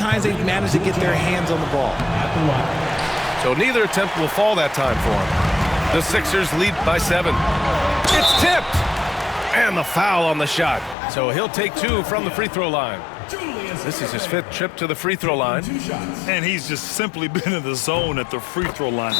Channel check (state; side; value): drops out; right; at 11.0 s